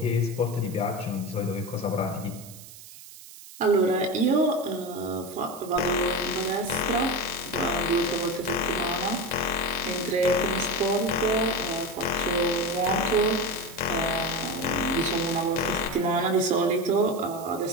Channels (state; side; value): noise; right; hiss, 17 dB below the sound